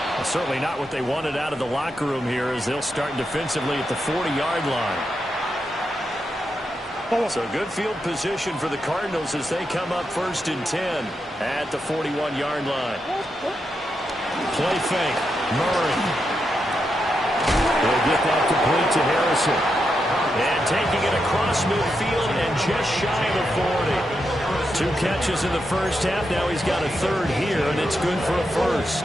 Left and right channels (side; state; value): both; normal; correlation 0.85